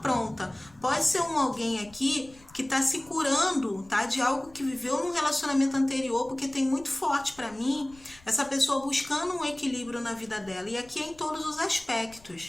Pode ser alguém aqui que tá se curando, tá? De algo que viveu num relacionamento anterior, porque tem muito forte pra mim essa pessoa buscando um equilíbrio na vida dela. E aqui é em todos os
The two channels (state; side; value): noise; left; rumble, 25 dB below the sound